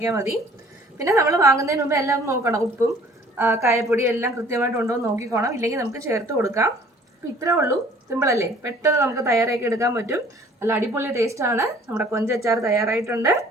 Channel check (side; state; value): both; normal; correlation 0.53